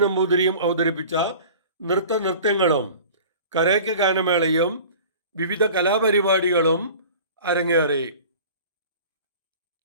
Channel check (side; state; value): both; inverted; correlation -0.42